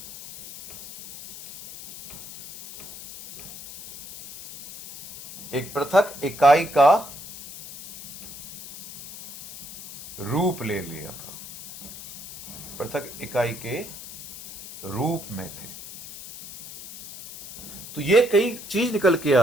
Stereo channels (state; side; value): noise; left; hiss, 13 dB below the sound